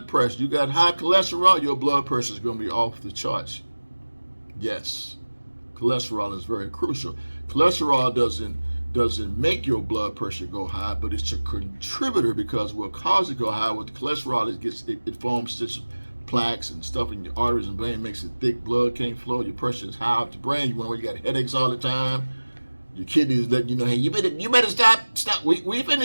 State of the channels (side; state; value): both; inverted; correlation -1.00